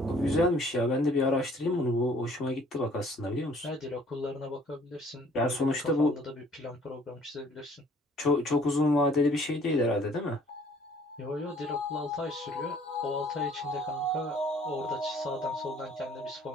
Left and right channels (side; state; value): both; normal; correlation 0.57